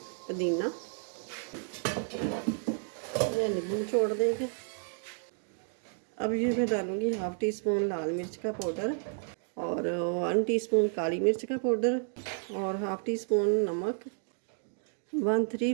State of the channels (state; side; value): silent; left; 57 dB below the other